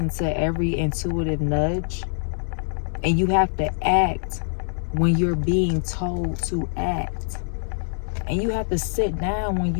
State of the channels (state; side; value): silent; right; digital silence